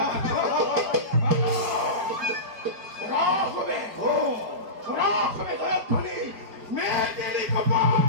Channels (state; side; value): late; left; 4.9 ms